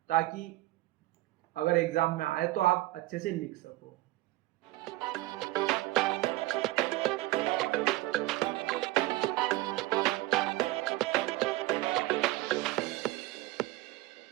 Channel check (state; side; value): quieter; left; 18.4 dB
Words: ताकि अगर एग्जाम में आए तो आप अच्छे से लिख सको।